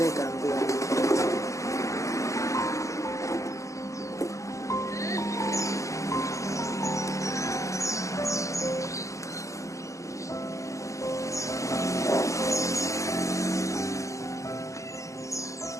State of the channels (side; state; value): right; late; 0.16 ms